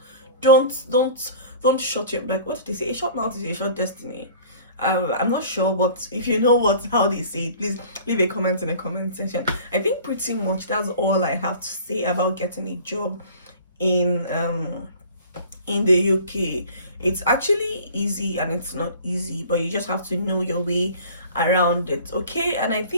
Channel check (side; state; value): both; inverted; correlation -0.45